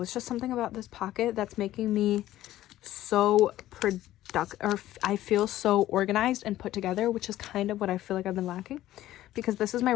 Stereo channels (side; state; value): right; quieter; 14.3 dB